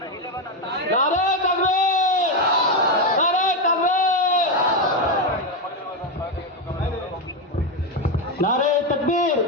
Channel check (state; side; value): normal; both; correlation 0.08